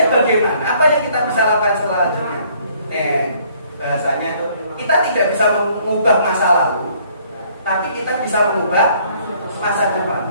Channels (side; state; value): both; inverted; correlation -0.62